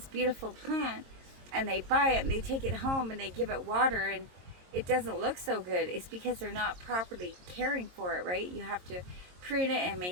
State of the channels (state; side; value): late; left; 22 ms